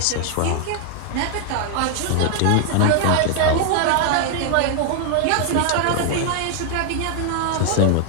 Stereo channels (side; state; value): both; different; correlation 0.00